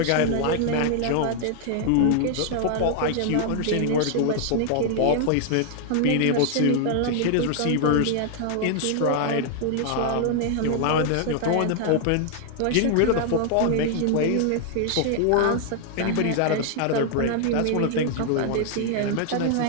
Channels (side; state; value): both; different; correlation 0.00